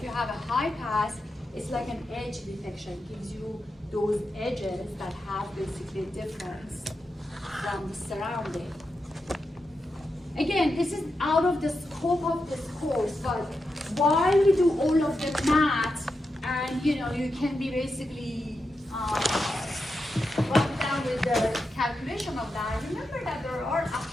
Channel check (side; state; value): both; normal; correlation 0.87